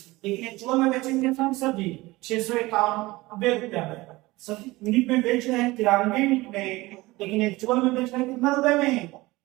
लेकिन एक्चुअल में बेचेंगे कितना सर जी, 651 रुपया में, सर यूनिट में बेच रहे हैं 93 यूनिट में, लेकिन एक्चुअल में बेच रहे हैं कितना रुपए में,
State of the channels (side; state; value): left; quieter; 20.4 dB